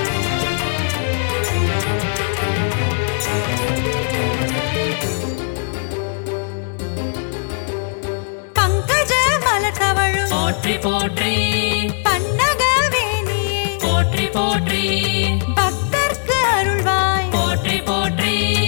பங்கஜ மலர் தவழும் போற்றி போற்றி பன்னகவேணியே போற்றி போற்றி பக்தர்க்கு அருள்வாய் போற்றி போற்றி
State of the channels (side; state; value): right; silent; digital silence